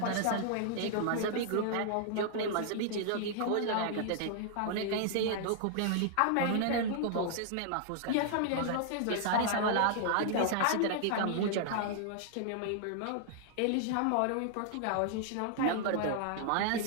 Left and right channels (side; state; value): both; different; correlation 0.00